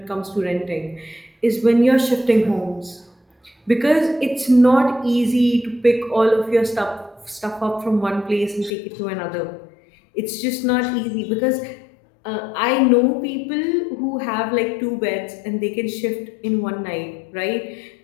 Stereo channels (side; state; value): right; drops out; at 8.7 s